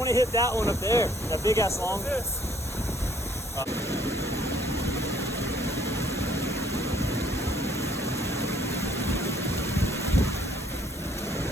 to hit that one up there. That big ass long. What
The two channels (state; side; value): normal; both; correlation 0.62